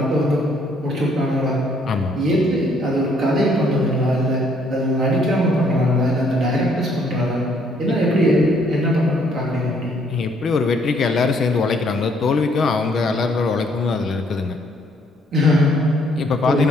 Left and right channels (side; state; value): both; normal; correlation 0.66